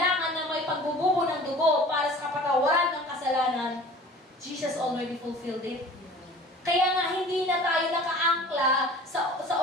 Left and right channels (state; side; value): normal; both; correlation 0.44